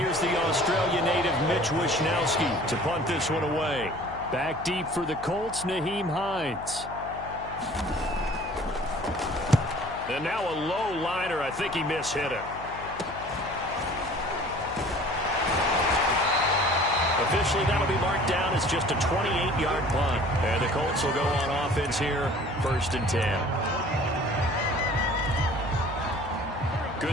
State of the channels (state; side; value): noise; left; hum, 15 dB below the sound